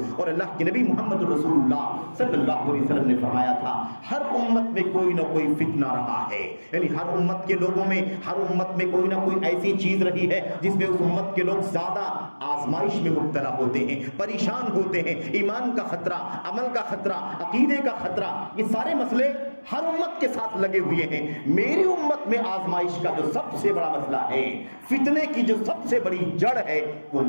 اور اللہ کے نبی محمد رسول اللہ صلی اللہ علیہ وسلم نے فرمایا تھا ہر امت میں کوئی نہ کوئی فتنہ رہا ہے، یعنی ہر امت کے لوگوں میں، ہر امت میں کوئی نہ کوئی ایسی چیز رہی ہے جس میں اس امت کے لوگ زیادہ آزمائش میں مبتلا ہوتے ہیں، پریشان ہوتے ہیں. ایمان کا خطرہ، عمل کا خطرہ، عقیدے کا خطرہ، یہ سارے مسئلے ہر امت کے ساتھ لگے ہوئے ہیں. میری امت میں آزمائش کا جو سب سے بڑا مسئلہ ہے، فتنے کی جو سب سے بڑی جڑ ہے، وہ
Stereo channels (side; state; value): both; inverted; correlation -1.00